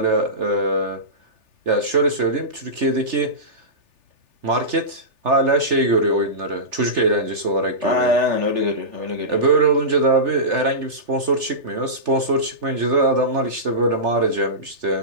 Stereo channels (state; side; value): late; left; 3.4 ms